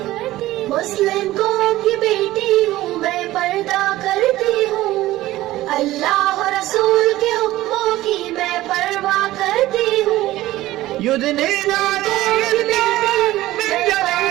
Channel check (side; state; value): left; quieter; 16.2 dB